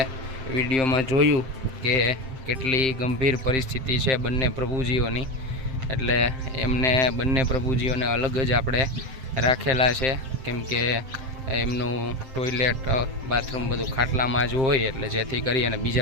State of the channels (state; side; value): late; left; 7.7 ms